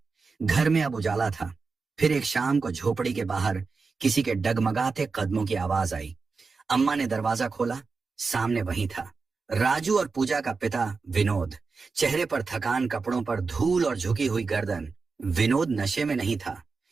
घर में अब उजाला था। फिर एक शाम को झोपड़ी के बाहर किसी के डगमगाते कदमों की आवाज आई। अम्मा ने दरवाजा खोला, सामने वही था राजू और पूजा का पिता विनोद, चेहरे पर थकान, कपड़ों पर धूल और झुकी हुई गर्दन। विनोद नशे में नहीं था,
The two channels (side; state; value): left; quieter; 4.5 dB